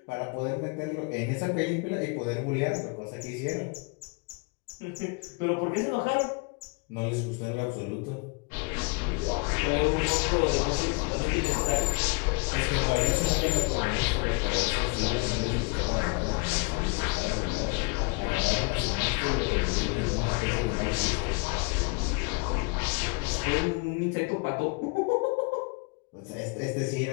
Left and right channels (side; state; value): right; quieter; 31.3 dB